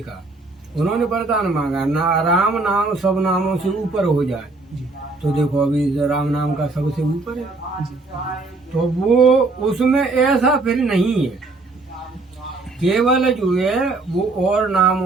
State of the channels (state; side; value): quieter; left; 3.5 dB